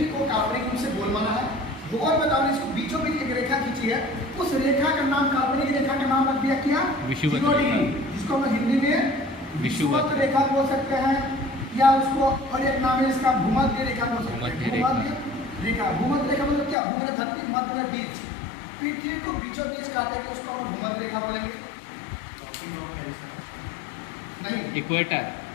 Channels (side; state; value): right; drops out; at 16.8 s